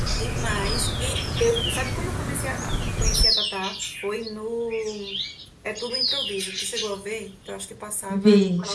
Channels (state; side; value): identical; both; correlation 1.00